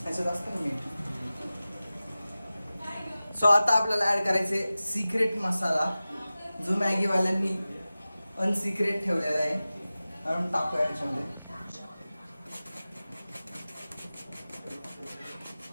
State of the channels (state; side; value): inverted; both; correlation -0.96